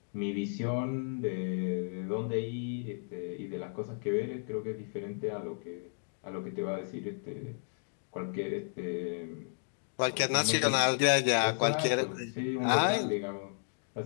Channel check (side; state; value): right; silent; digital silence